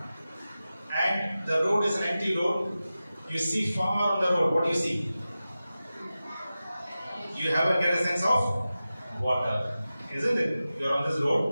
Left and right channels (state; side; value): inverted; both; correlation -0.94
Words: and the road is an empty road, you see far on the road, what do you see? You get a sense of water, isn't it? You are on this